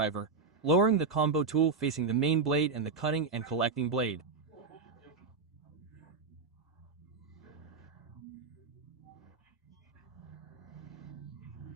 lowering the combo tool facing the main blade and the cutting and collecting blade.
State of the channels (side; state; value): left; quieter; 4.6 dB